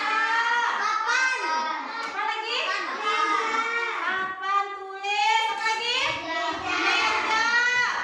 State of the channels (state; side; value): identical; both; correlation 1.00